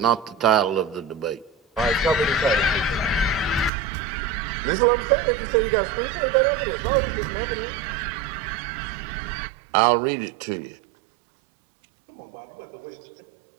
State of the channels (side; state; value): left; drops out; at 3.7 s